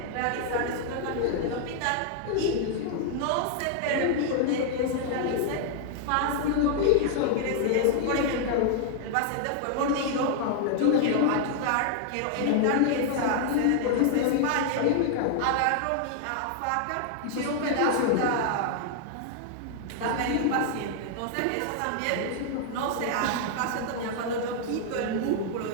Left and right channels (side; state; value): both; different; correlation 0.00